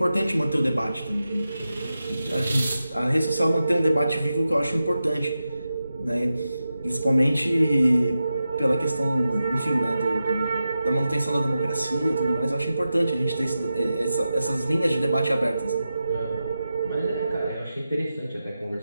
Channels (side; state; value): both; inverted; correlation -0.91